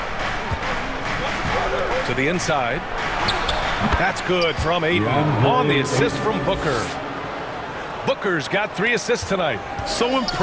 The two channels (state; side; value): identical; both; correlation 1.00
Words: To the inside. That's good from Ayton on the assist from Booker. Booker's got 3 assists tonight. So